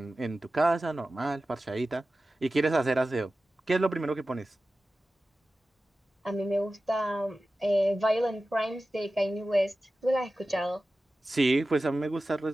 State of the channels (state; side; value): normal; both; correlation 0.95